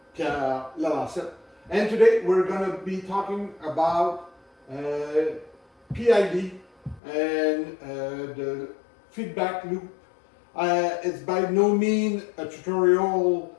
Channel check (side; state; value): right; drops out; at 7.0 s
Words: Pierre Lalancette, and today we're going to be talking about PID and the feedback loop. It's by no means a tutorial